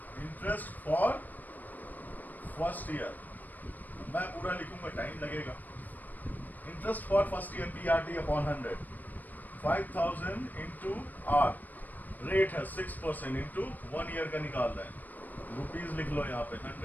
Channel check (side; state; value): right; late; 0.085 ms